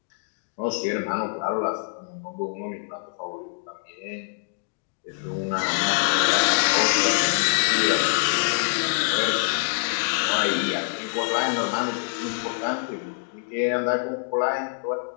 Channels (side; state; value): right; silent; digital silence